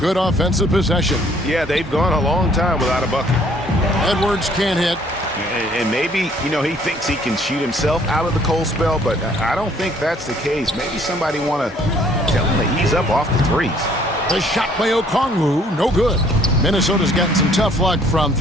offensive possession. Yeah, they've gone a long time without a bucket. Edwards can't hit. And maybe, you know, he thinks he can shoot himself out of the cold spell, but I don't think that's the case. Maybe somebody want to tell him to ease up off the threes. The shot by Okongwu, no good. Minnesota's gotten some tough luck from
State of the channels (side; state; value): both; normal; correlation 0.60